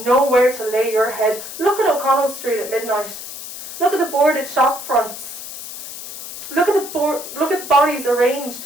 nowhere to lay your head, look at O'Connell Street at midnight. Look at the boarded shop fronts. Look at the bodies arranged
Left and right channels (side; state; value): left; noise; hiss, 11 dB below the sound